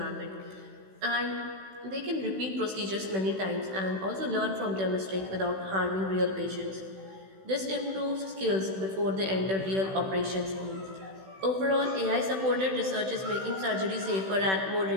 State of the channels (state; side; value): late; left; 16 ms